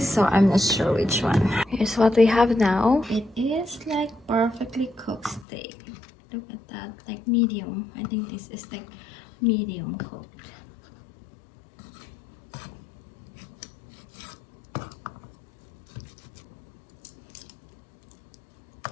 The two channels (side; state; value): right; drops out; at 5.5 s